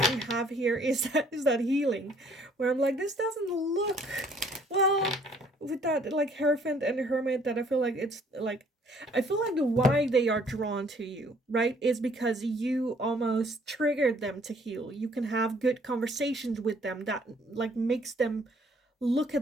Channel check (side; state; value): both; normal; correlation 0.61